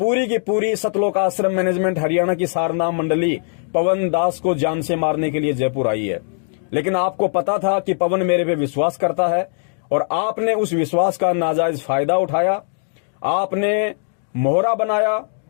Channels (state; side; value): silent; right; digital silence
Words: की पूरी सतलोक आश्रम मैनेजमेंट हरियाणा की सारनाम मंडली पवन दास को जान से मारने के लिए जयपुर आई है। लेकिन आपको पता था कि पवन मेरे पे विश्वास करता है, और आपने उस विश्वास का नाजायज फायदा उठाया। आपने मोहरा बनाया,